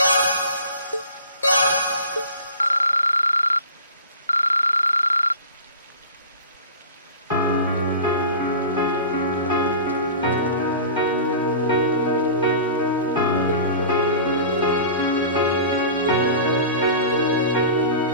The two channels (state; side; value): inverted; both; correlation -0.38